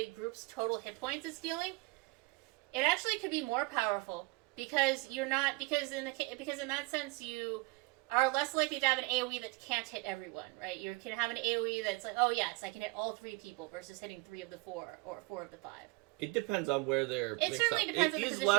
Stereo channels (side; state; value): left; quieter; 24.5 dB